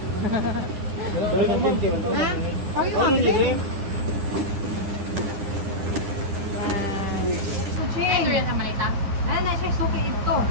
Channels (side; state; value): left; late; 10 ms